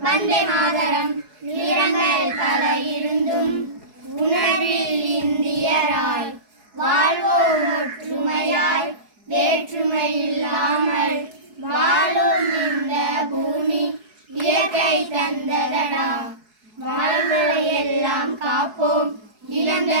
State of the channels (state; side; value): late; left; 4.7 ms